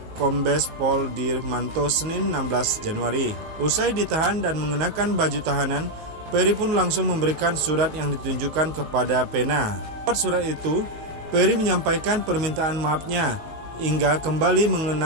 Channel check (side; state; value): left; late; 19 ms